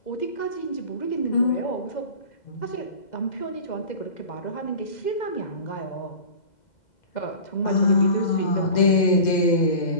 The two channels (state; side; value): late; right; 2.0 ms